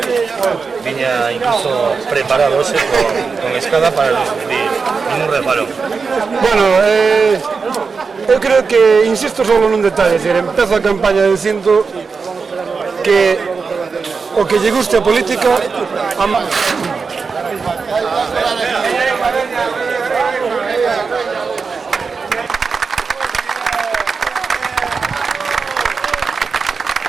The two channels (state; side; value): quieter; left; 5.0 dB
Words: viña incluso preparado hoxe con escada para recibir ningún reparo. Bueno, eu creo que insisto solo nun detalle, empezo a campaña dicindo que o que lle guste a política